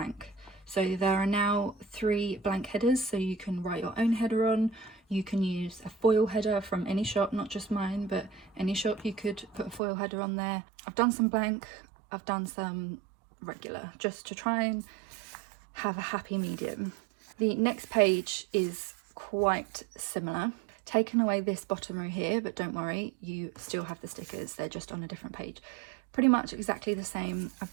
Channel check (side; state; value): left; drops out; at 9.8 s